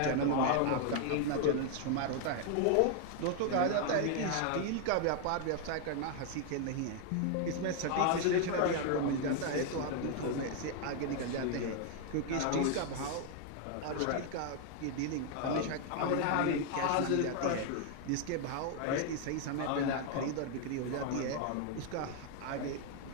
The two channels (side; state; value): both; different; correlation 0.00